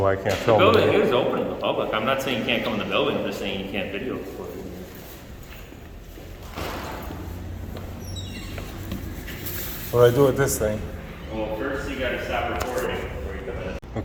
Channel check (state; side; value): identical; both; correlation 1.00